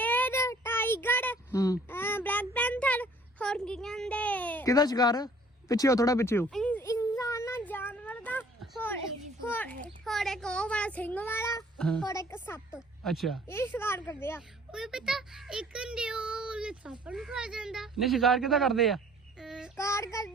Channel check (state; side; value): normal; both; correlation 0.55